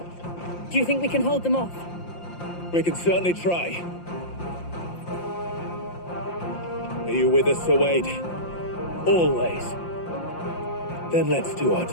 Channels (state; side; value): late; right; 5.7 ms